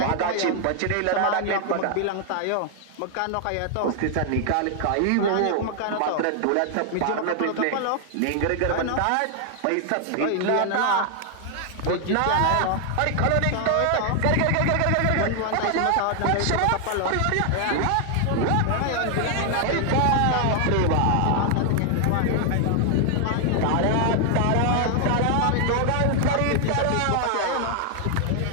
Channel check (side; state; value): both; different; correlation 0.00